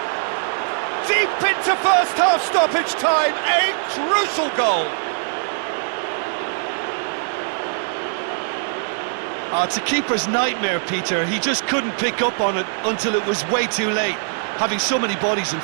Deep into first half stoppage time, a crucial goal. Oh, it's a keeper's nightmare, Peter. He just couldn't pick up on it until it was way too late, having so many bodies in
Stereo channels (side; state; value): left; silent; 65 dB below the other